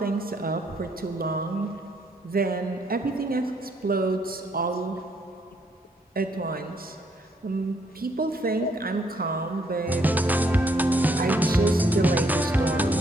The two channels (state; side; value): normal; both; correlation 0.70